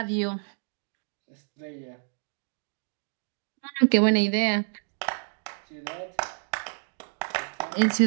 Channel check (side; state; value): left; silent; digital silence